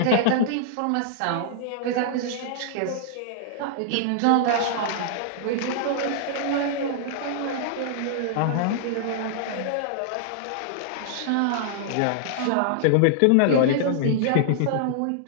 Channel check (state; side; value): different; both; correlation -0.01